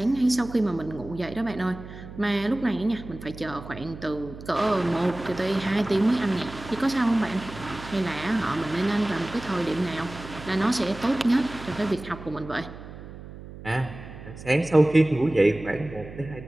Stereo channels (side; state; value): right; noise; hum, 14 dB below the sound